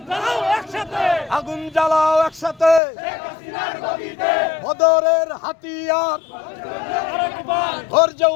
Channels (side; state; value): right; drops out; at 2.8 s